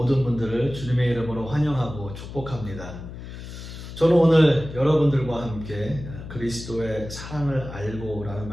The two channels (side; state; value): left; noise; hum, 11 dB below the sound